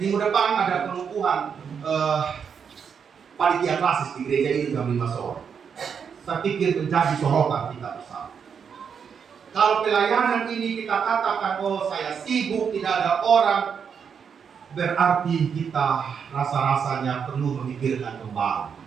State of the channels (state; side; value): quieter; left; 6.9 dB